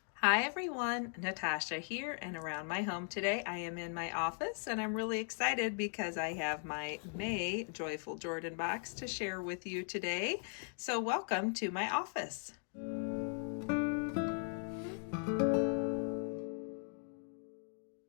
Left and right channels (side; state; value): right; silent; 52 dB below the other